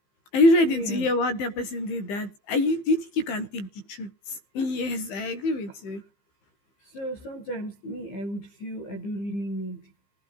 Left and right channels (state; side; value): late; right; 15 ms